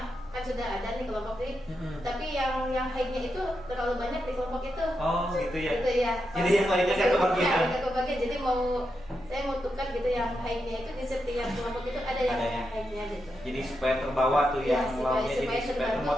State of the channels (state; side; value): noise; right; rumble, 22 dB below the sound